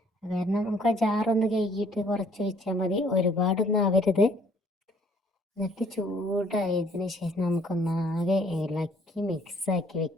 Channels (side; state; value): both; normal; correlation 0.61